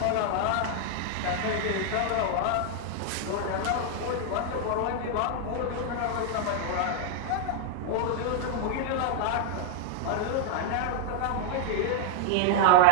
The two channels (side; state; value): both; different; correlation 0.00